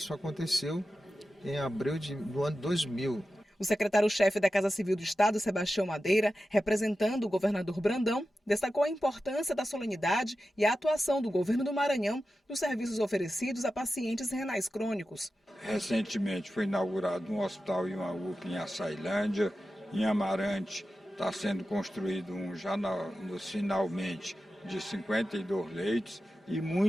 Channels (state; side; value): normal; both; correlation 0.92